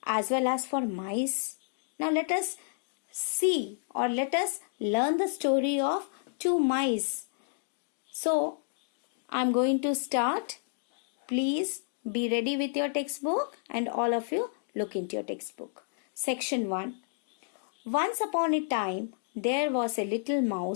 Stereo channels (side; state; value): right; silent; digital silence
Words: as well as for mice? Now, let us see or let us learn the story of two mice. So, I'm going to start. Please be ready with your textbook and all of you look into your textbook. Section 1. Once upon a time, there was a little